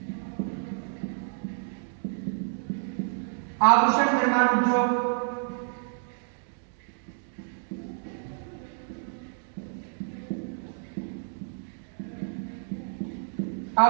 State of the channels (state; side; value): silent; left; 58 dB below the other